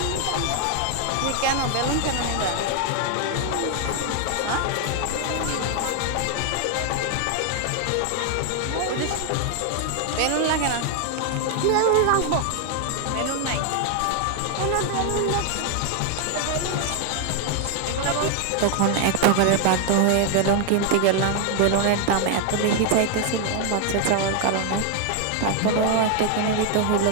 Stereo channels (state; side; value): different; both; correlation 0.00